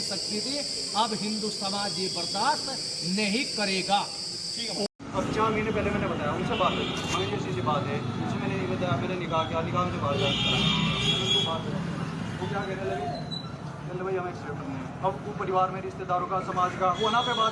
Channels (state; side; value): identical; both; correlation 1.00